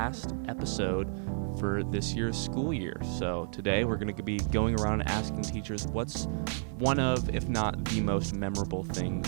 episode for this year's school year. So today we're going to be going around and asking teachers what's one of, if not the most memorable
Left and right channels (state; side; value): silent; left; 57 dB below the other